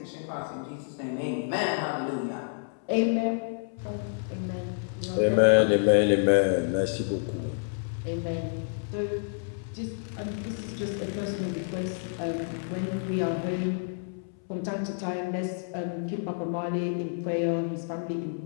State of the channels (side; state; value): right; silent; 58 dB below the other